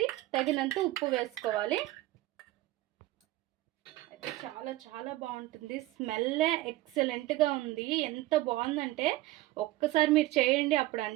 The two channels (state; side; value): quieter; left; 17.3 dB